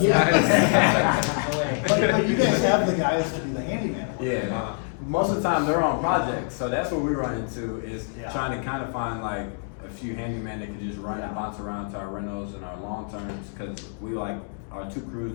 Yeah. nice. But you guys have the guys that do the handyman work. Yeah. Most of the time they're on projects, so that's what we run into is Yeah. trying to kind of find like a few handymen that can just run Yeah. and bounce around to our rentals and our long terms, because we like our 2 crews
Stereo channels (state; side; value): silent; right; 57 dB below the other